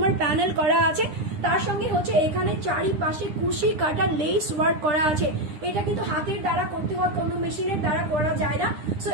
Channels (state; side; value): late; left; 9.8 ms